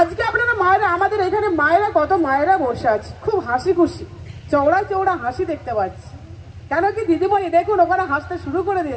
আপনারা মায়েরা, আমাদের এখানে মায়েরা, কত মায়েরা বসে আছে, খুব হাসি খুশি, চওড়া চওড়া হাসি দেখতে পাচ্ছি। কেন কি দিদিমণি দেখুন ওখানে হাসতে শুরু করে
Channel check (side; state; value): both; identical; correlation 1.00